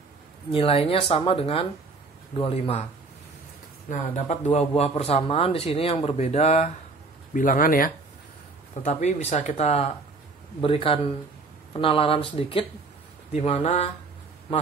nilainya sama dengan 25. Nah, dapat dua buah persamaan di sini yang berbeda bilangan ya. Tetapi bisa kita berikan penalaran sedikit di mana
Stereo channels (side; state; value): left; quieter; 3.8 dB